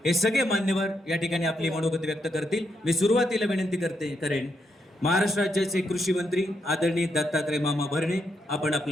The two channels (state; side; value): normal; both; correlation 0.80